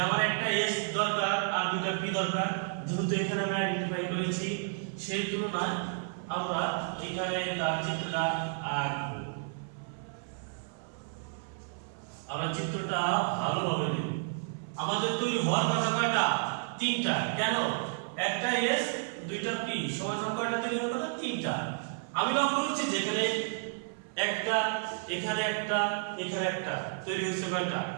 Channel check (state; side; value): silent; left; 57 dB below the other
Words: আমার একটা এস দরকার আর দুটা পি দরকার, যেহেতু এখানে আমি আইডেন্টিফাই করেছি সেই তুলনায় আমরা এখানে তার চিত্রটা আঁকবো। আমরা চিত্রটা ভালোভাবে দেখব। আমাদের তৈরি হওয়ার কথা কয়টা, তিনটা। কেন, একটা এস দুইটা পি সমান কয়টা তৈরি হওয়ার কথা, তিনটা। আমি লক্ষ্য করছি যেখানে একটা, এখানে একটা, এখানে একটা তৈরি হয়েছে কয়টা,